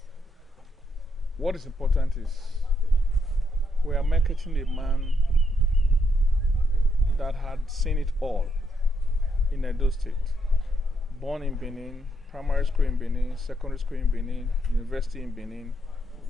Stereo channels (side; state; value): both; normal; correlation 0.78